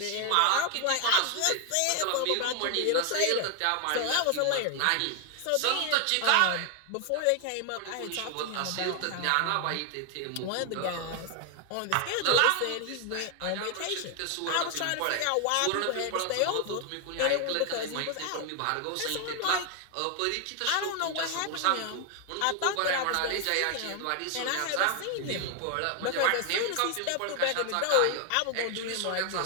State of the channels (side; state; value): both; different; correlation 0.00